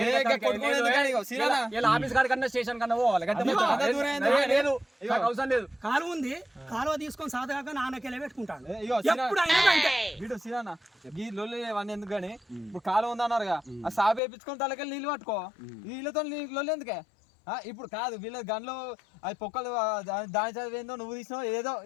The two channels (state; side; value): drops out; right; at 14.2 s